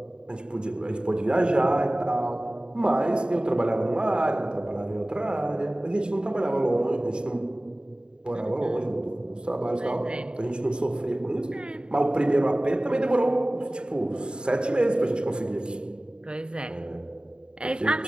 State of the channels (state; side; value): late; left; 0.050 ms